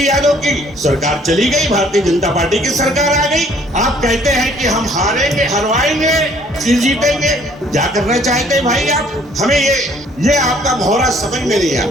यादव की सरकार चली गई, भारतीय जनता पार्टी की सरकार आ गई। आप कहते हैं कि हम हारेंगे, हरवाएंगे, फिर जीतेंगे। क्या करना चाहते हैं भाई आप? हमें ये आपका भौरा समझ में नहीं आया,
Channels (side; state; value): both; normal; correlation 0.60